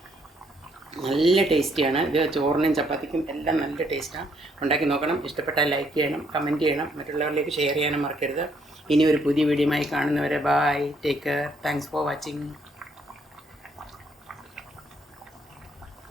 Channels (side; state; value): both; normal; correlation 0.70